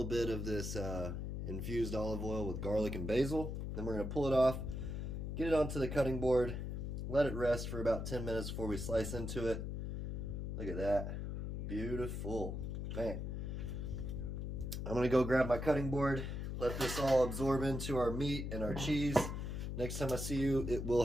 bit of this infused olive oil with garlic and basil. Then we're going to pull it off, get it onto the cutting board, let it rest for about 10 minutes before we slice into it. Look at that. Beautiful. Man. I'm going to go grab my cutting board, let this all absorb into our meat and our cheese. Next time I see you, it will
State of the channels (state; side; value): noise; left; hum, 4 dB below the sound